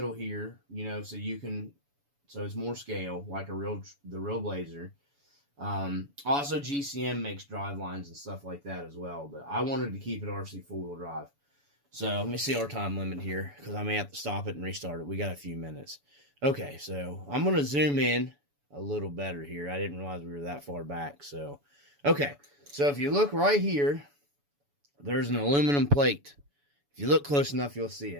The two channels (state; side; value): late; left; 7.0 ms